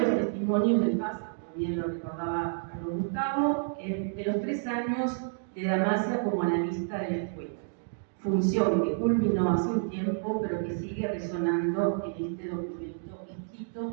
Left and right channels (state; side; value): silent; left; digital silence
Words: testimonios del paso, como bien lo recordaba Carlos Gustavo, de los 3 años de Damasia como analista de la escuela. Función que culminó hace un tiempo, pero que sigue resonando en este documento